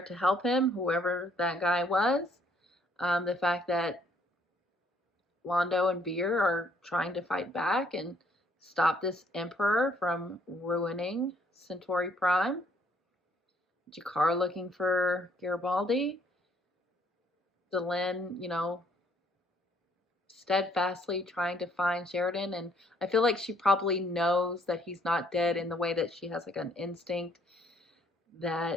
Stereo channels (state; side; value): normal; both; correlation 0.66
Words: to help him, whoever that guy was. The fact that Londo and Veer are trying to fight back and stop this Emperor from ruining Centauri Prime. Jakar looking for Garibaldi. Delenn, steadfastly trying to find Sheridan, and I feel like she probably knows that he's not dead in the way that she has like an instinct